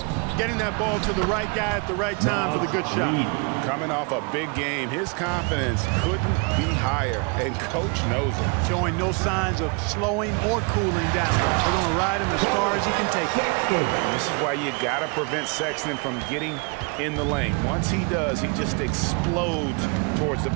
getting that ball to the right guy at the right time for the good shot. Coming off a big game, his confidence couldn't be higher, and Coach knows it. Showing no signs of slowing or cooling down. They're going to ride him as far as he can take it. And this is why you got to prevent Sexton from getting in the lane. Once he does, he just explodes towards the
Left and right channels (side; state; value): left; quieter; 32.7 dB